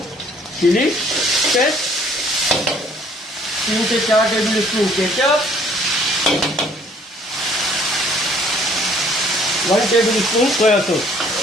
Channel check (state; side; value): normal; both; correlation 0.59